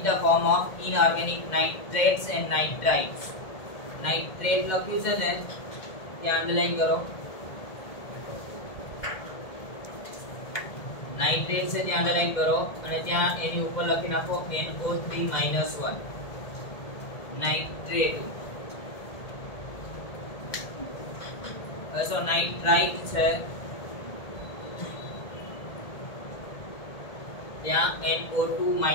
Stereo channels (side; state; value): right; late; 1.8 ms